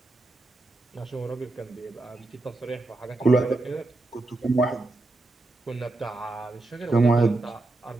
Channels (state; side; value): quieter; left; 3.0 dB